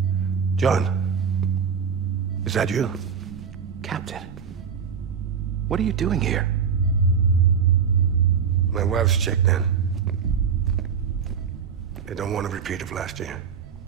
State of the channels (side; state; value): left; quieter; 6.8 dB